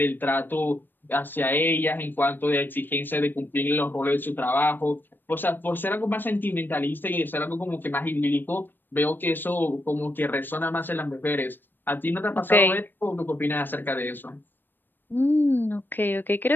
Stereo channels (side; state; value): right; late; 0.094 ms